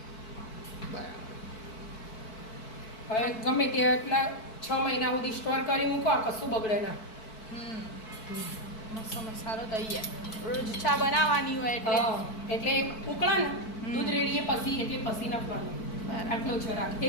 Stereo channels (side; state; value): right; late; 4.5 ms